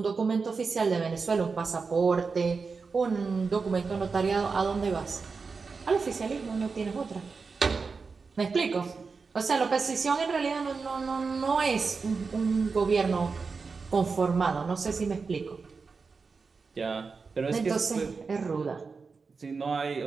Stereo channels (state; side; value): quieter; left; 4.8 dB